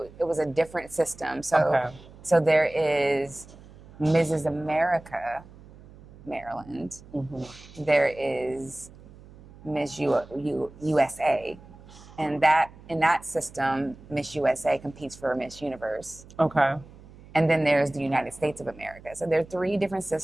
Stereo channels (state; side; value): noise; right; hum, 21 dB below the sound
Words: it was a different system. So, Okay. so there is Mrs. America, Maryland. Mm-hmm. There is USA, and that in that system, Miss USA competes for Miss Universe. Okay. And then there's the United States of America. So there are 3 different